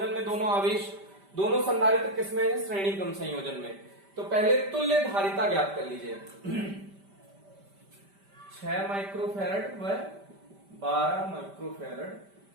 में दोनों आवेश, दोनों संधारित्र किसमें है, श्रेणी क्रम संयोजन में। तो पहले तुल्य धारिता ज्ञात कर लीजिए। 6 माइक्रोफैरड व 12 माइक्रोफैरड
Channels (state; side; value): late; left; 5.1 ms